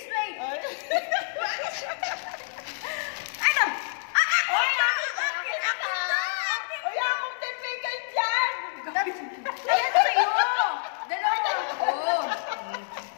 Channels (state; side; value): silent; right; digital silence